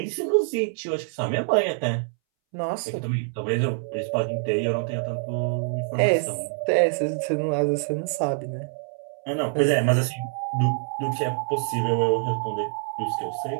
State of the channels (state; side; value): silent; left; 61 dB below the other